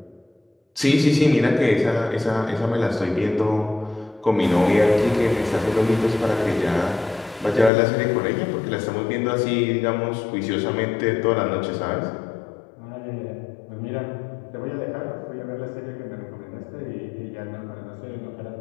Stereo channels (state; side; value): drops out; right; at 7.7 s